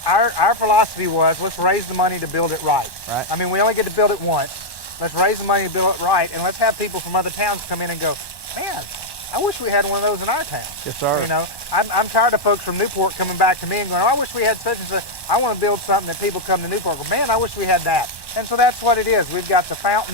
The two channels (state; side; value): late; right; 1.1 ms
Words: our philosophy was let's raise the money to build it right. Right. I mean, we only get to build it once. Let's raise the money to build it right, and let's have people from other towns come in and go, man, I wish we had one of those in our town. Yes, sir. You know, I'm tired of folks from Newport coming back to me and going, oh, I wish we had such and such. I want to build something that people come to Newport and go, man, I wish we had that. And so that's what it is. We've got the